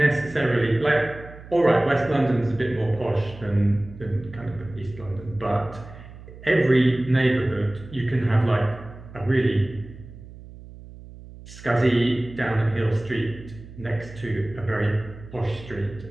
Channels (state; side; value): noise; right; hum, 17 dB below the sound